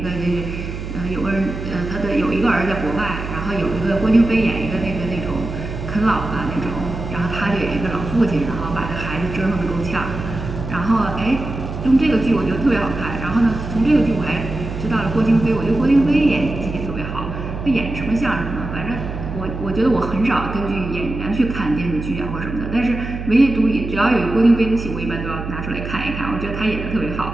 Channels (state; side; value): noise; right; hum, 7 dB below the sound